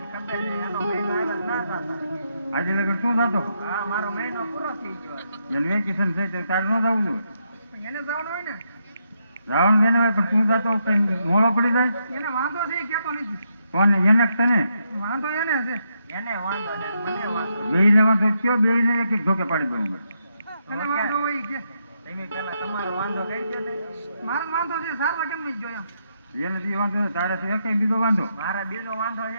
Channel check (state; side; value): inverted; both; correlation -0.80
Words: ખબર નહીં એનો મહિનો આગળ ના થતા. આજે લગન શું થતો? હા મારો મહિનો પૂરો થઈ ગયો. એને વેકેશન છે તો તારે ન જવું જોઈએ. એને જવાનું હોય ને. રાવણ બેન હોય પણ તું જતો કઈ મોડો પડી જાય. એને વાંધો છે એ કહેતો નથી. કોને? એને તને વાંધો એને છે. એને વાંધો ને મને વાંધો. બેયને વાંધો કયો? બેયને એક એક ધોકે પાડી દઉં. એને વાંધો હોય કે તમે પેલા તમારો વાંધો કહી દો ને. મારો વાંધો છે સારવા કેમ નહીં જોયા? એને બી વાંધો તારે તો એક બીજો વાંધો. મારા બીજો વાંધો